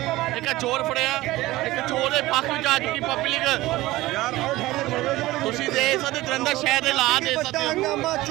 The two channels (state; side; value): quieter; left; 18.1 dB